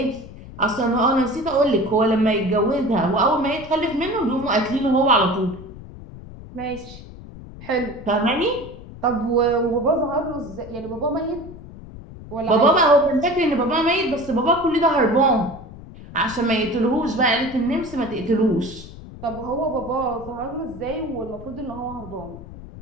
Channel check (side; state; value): left; noise; rumble, 15 dB below the sound